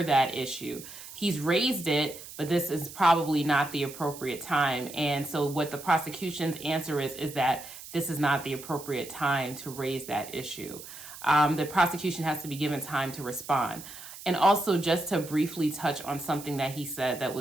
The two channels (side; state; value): right; noise; hiss, 14 dB below the sound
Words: that issue. He's raised it, but this is probably not the appropriate time. And so what the prosecution's answer is that this is not the appropriate time to raise that issue. The prosecution has to be given time to respond. And also, just to briefly touch on something that he said